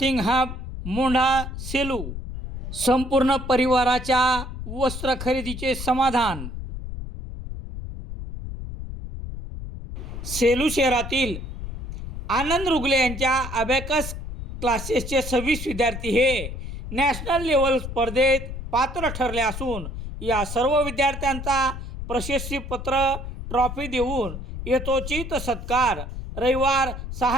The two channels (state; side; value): noise; left; rumble, 8 dB below the sound